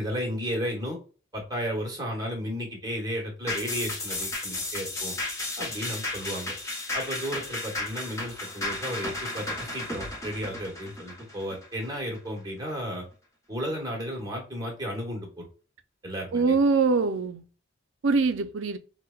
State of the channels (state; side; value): normal; both; correlation 0.33